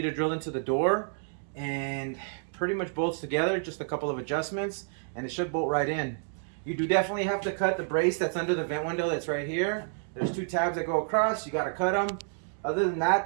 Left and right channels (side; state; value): left; silent; digital silence